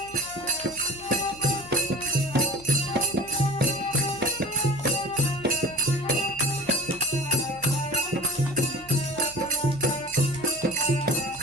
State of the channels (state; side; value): noise; left; hum, 22 dB below the sound